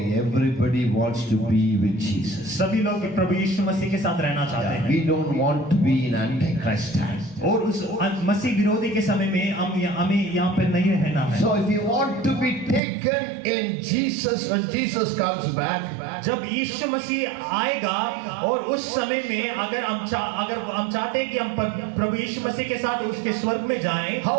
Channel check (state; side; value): drops out; left; at 12.8 s